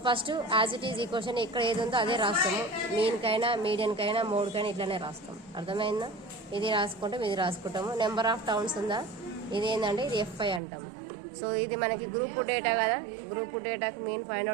first as it is equation ఇక్కడ ఏది ఉందో అదే రాస్తాము. మీన్కైనా మీడియన్కైనా మోడ్కైనా ఇట్లానే రాస్తాం. అర్థమైందా? ఇది రాసుకుంటాం, ఇది రాసుకుంటాము. నెంబర్ ఆఫ్ టౌన్స్ ఉందా, ఇది ఏంటంటే ఇది FI అంటాము. సో ఇది మనకి గ్రూప్ డేటా కదా. గ్రూప్ డేటాకి మీన్ ఫైండ్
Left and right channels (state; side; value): drops out; left; at 10.6 s